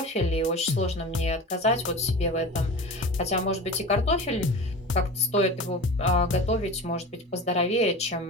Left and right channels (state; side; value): normal; both; correlation 0.33